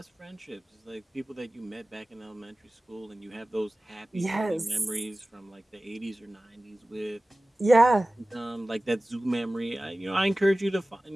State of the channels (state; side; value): normal; both; correlation 0.97